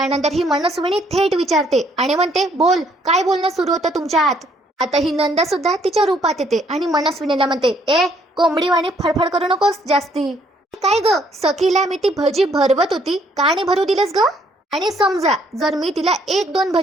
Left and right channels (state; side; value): normal; both; correlation 0.66